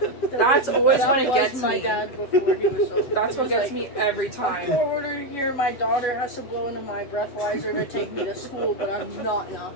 that's always That when it was gets my me. dad before he was sober. That's He what was gets like, me every I'm time. forwarded here. My daughter has to blow into my breathalyzer to take me to school, but I'm not an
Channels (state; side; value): late; right; 7.3 ms